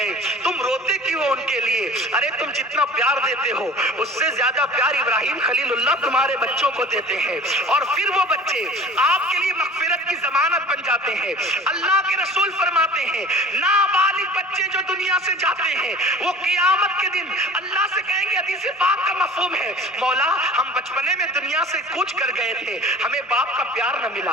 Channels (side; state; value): both; normal; correlation 0.43